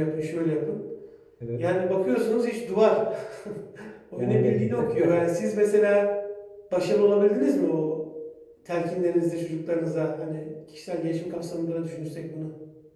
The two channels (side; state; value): both; identical; correlation 1.00